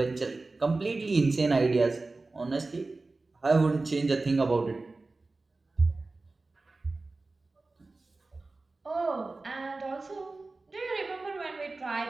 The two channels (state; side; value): quieter; left; 3.4 dB